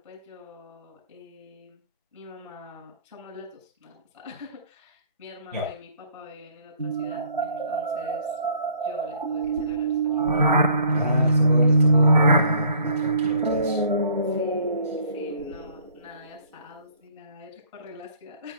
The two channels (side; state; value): both; inverted; correlation -0.57